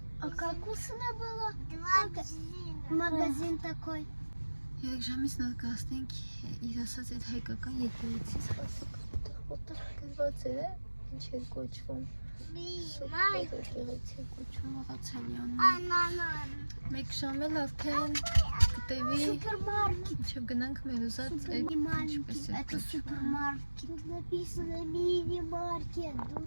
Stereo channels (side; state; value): both; inverted; correlation -1.00